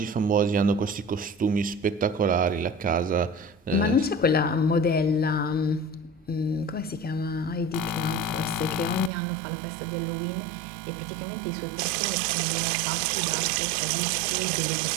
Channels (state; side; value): drops out; left; at 9.1 s